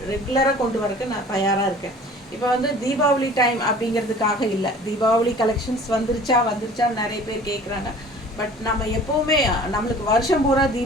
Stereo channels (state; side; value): normal; both; correlation 0.47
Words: ரெகுலராக கொண்டு வரக்கு நான் தயாராக இருக்கேன். இப்போ வந்து தீபாவளி டைம் அப்படிங்கிறதுக்காக இல்லை, தீபாவளி கலெக்ஷன்ஸ் வந்துருச்சா நிறைய பேர் கேட்குறாங்க. பட் நம்ம எப்போவுமே நம்மளுக்கு வருஷம் பூரா